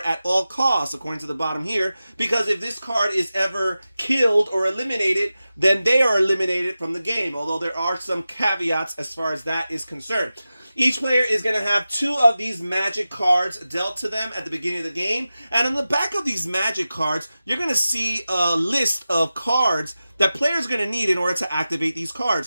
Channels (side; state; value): both; inverted; correlation -0.94